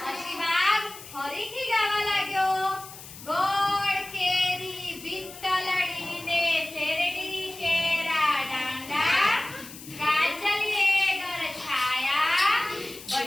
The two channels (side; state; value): left; noise; hiss, 15 dB below the sound